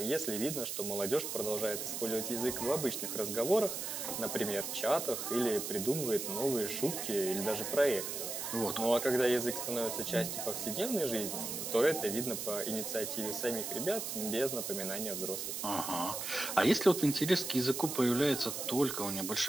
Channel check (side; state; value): right; noise; hiss, 4 dB below the sound